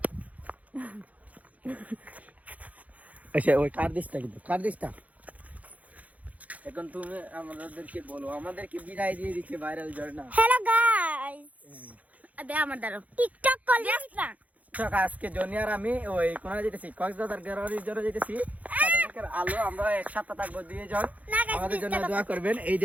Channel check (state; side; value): late; left; 0.072 ms